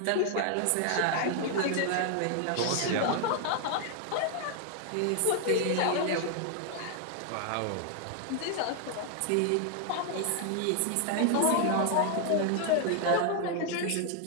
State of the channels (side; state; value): both; different; correlation 0.00